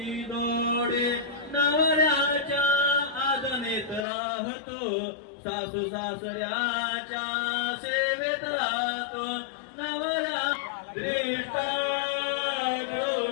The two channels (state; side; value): drops out; right; at 4.0 s